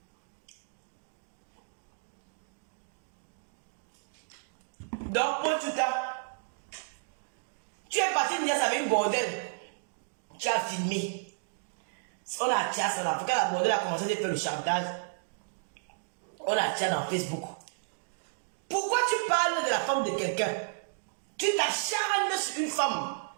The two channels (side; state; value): left; silent; digital silence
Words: Donc, pour tout ça, tu es parti de Nias avec une bordel. Tu as filmé. On a chassé en Afrique. La bordel a commencé à faire le chantage. On a chassé dans Facebook. Pourquoi tu parles de la femme de quelqu'un? Tu t'acharnes sur une femme.